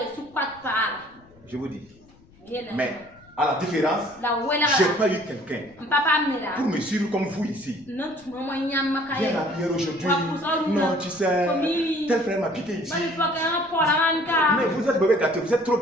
Je vous dis. Mais à la différence, je n'ai pas eu quelqu'un pour me suivre comme vous ici. Viens à la prière aujourd'hui. Non, tu sais, tel frère m'a piqué ici. Mais vous êtes mauvais gâté, vous êtes trop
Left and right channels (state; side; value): noise; left; rumble, 28 dB below the sound